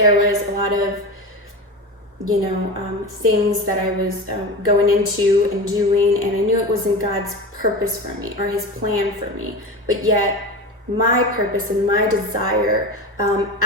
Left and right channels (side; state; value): both; normal; correlation 0.26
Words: was a lot of things that I was going into and doing, and I knew it wasn't God's purpose for me or his plan for me, but yet my purpose and my desire